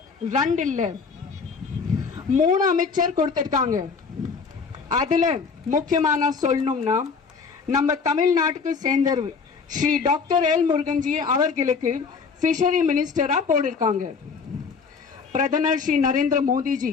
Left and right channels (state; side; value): quieter; right; 5.3 dB